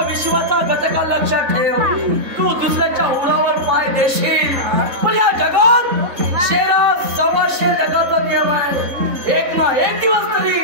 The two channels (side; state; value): left; late; 3.9 ms